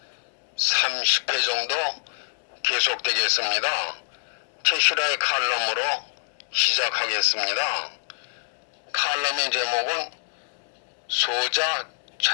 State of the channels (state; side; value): silent; right; digital silence